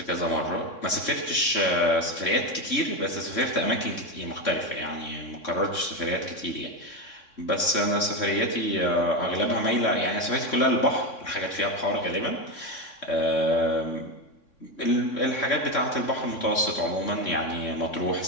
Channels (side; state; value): right; late; 3.6 ms